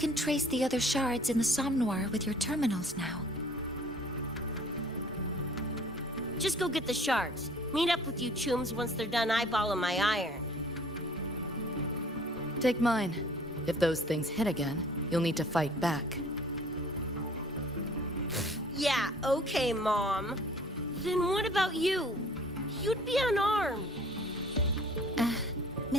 trace the other shards in the Somnoir with your terminals now. Just go get the shards. Meet up with you chooms once they're done eyeballing my iron. Take mine. If those things hit again, you'll need to fight back. Yeah, okay, Mom. Then what about you? You'd be unarmed.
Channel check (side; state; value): both; normal; correlation 0.53